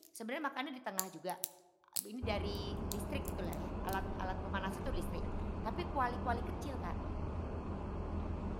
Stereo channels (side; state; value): both; identical; correlation 1.00